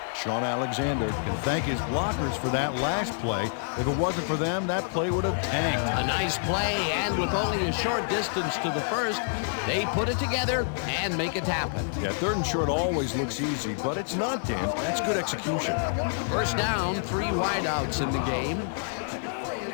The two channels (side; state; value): right; silent; 60 dB below the other